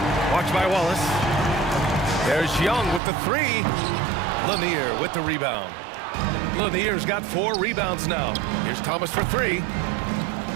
Watched by Wallace. There's Young with the three. Lanier with the rebound. Lanier's got 4 rebounds now. Here's Thomas for 3.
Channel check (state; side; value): drops out; left; at 3.0 s